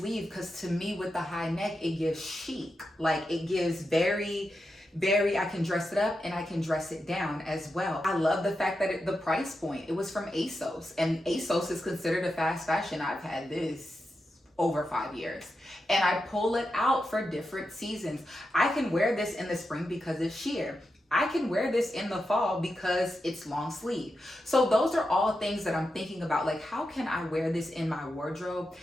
because to me with the high neck, it gives chic. Like it gives very, I can dress it up and I can dress it down as well. I love the fact that the price point, it was from ASOS, and ASOS is considered a fast fashion. I've had this over 5 years and I pull it out for different seasons. I can wear this in the spring because it's sheer. I can wear this in the fall because it's long sleeve. So those are all things that I'm thinking about. Like, how can I wear this in my wardrobe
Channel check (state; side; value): normal; both; correlation 0.88